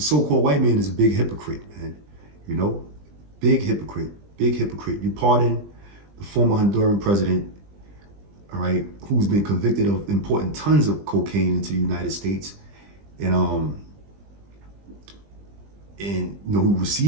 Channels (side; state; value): left; late; 20 ms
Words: so-called white man is a big hypocrite, man. Big hypocrite, big hypocrite. You pardon the former Honduran president, all right, who's been convicted of importing tons of cocaine into the United States, and who